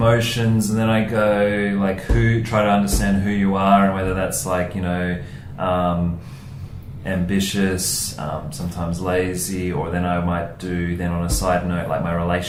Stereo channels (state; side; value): identical; both; correlation 1.00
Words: and then I go like try to understand who you are, and whether that's like, ambitious, sometimes lazy, or then I might do then on a side note like my